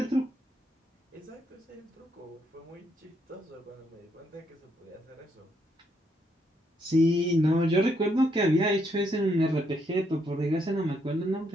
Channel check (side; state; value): both; normal; correlation 0.74